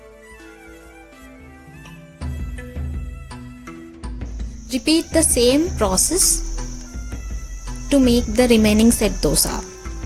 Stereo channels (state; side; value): identical; both; correlation 1.00